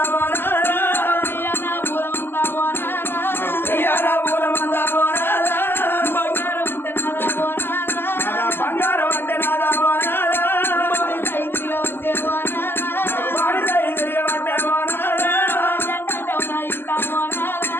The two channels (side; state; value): right; late; 0.11 ms